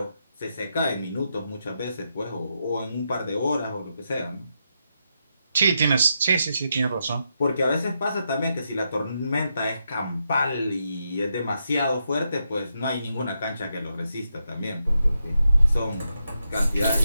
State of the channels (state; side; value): inverted; both; correlation -0.83